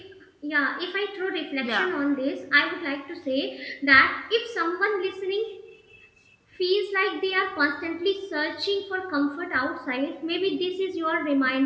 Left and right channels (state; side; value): identical; both; correlation 1.00